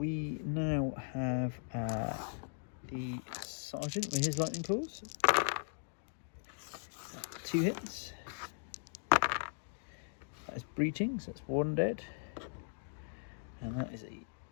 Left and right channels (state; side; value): silent; right; digital silence